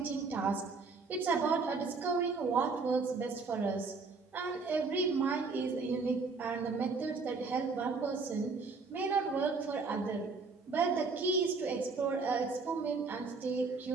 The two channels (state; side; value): quieter; left; 4.3 dB